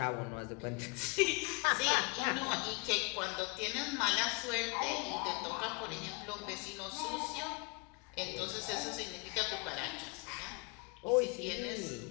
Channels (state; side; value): quieter; right; 30.2 dB